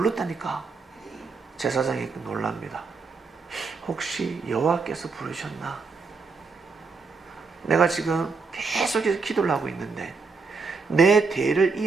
제사장이 놀랍니다. 혹시 여호와께서 부르셨나? 내가 지금 계속해서 기도를 하고 있는데 내 대를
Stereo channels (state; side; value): quieter; left; 4.5 dB